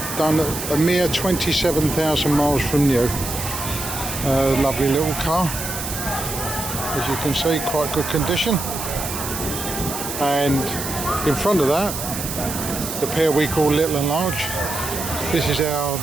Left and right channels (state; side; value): noise; right; hiss, 6 dB below the sound